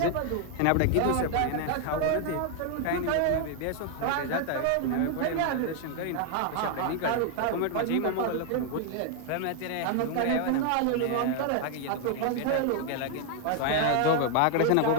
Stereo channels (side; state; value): both; different; correlation 0.00